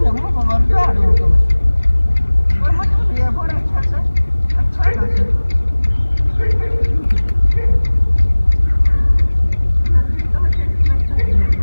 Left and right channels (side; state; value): both; inverted; correlation -1.00